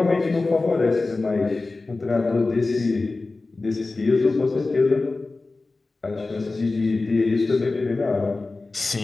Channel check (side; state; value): right; quieter; 3.5 dB